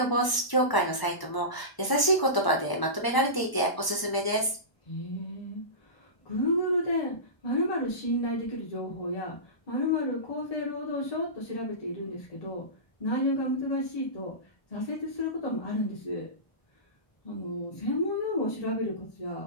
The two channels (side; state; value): right; late; 1.0 ms